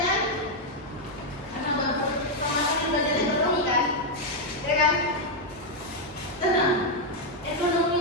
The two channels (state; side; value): normal; both; correlation 0.00